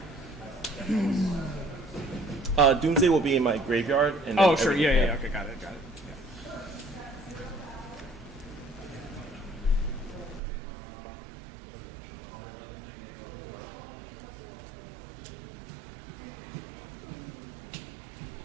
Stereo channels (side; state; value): left; drops out; at 10.4 s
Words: Doomsday will be in my graveyard. And then Oh, sure. everything- Yeah. Okay, got it.